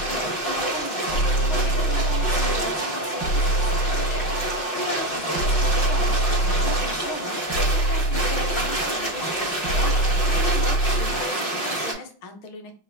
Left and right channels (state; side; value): late; right; 5.7 ms